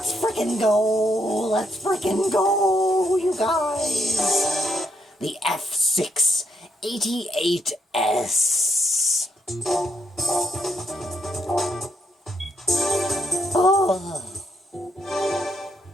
freaking go, you guys. The F688S. Oh.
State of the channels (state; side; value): normal; both; correlation 0.77